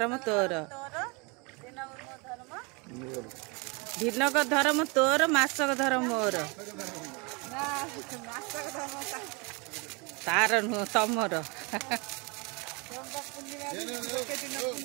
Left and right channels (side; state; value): left; quieter; 29.9 dB